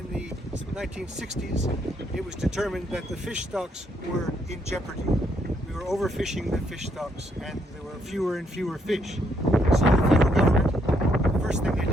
the 1960s, it was determined that the fish stocks were in jeopardy. We were overfishing the fish stocks and there were fewer and fewer fish. So the federal government, the first thing they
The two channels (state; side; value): normal; both; correlation 0.73